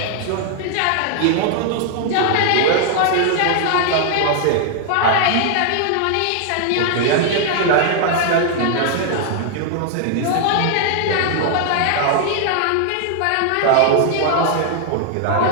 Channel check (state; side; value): different; both; correlation 0.00